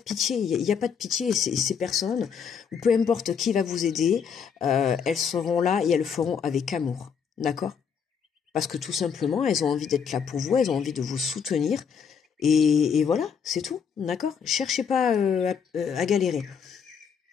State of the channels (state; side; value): quieter; right; 6.8 dB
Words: il n'y a pas de pitié, ces personnes, ou peu importe qui va vous aider, elles seront là et elles le feront avec amour, d'accord? Parce que tout simplement, elles ont envie d'être là pour vous, elles ont envie de vous soutenir, et voilà, c'est tout, d'accord? Cherchez pas à galérer.